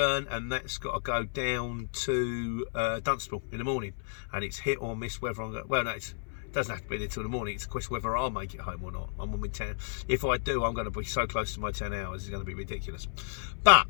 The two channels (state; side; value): silent; right; 57 dB below the other